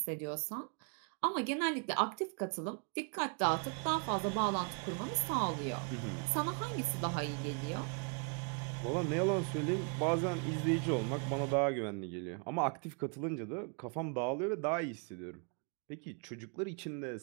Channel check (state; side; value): quieter; left; 38.9 dB